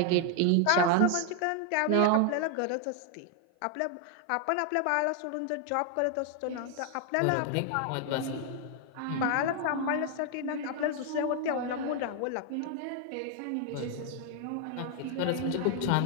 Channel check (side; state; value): both; different; correlation 0.00